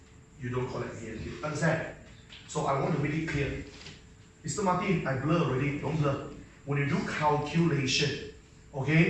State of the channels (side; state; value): both; identical; correlation 1.00